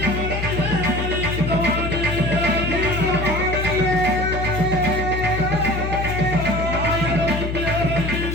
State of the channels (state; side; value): noise; left; hum, 3 dB below the sound